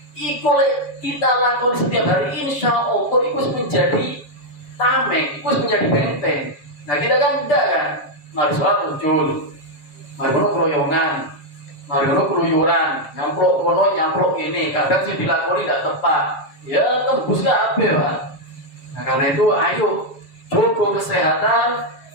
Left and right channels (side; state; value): right; late; 7.1 ms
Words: Iku kita lakukan setiap hari, insya Allah itu menjadi tameng, itu menjadi benteng. Nah kita kan tidak kan, mari sholat muncul, mari keroyongan, mari keluyuran, nyamplok ini, kadang sih dilakoni tidak tepat, ya tembus gak apa Pak. Nah karena itu ayo jaga kesehatan